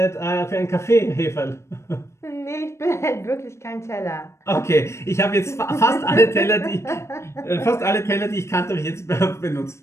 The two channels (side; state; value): right; late; 0.13 ms